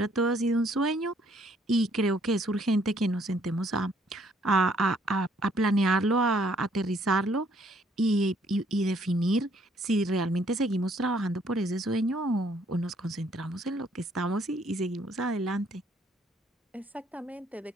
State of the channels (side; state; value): both; normal; correlation 0.65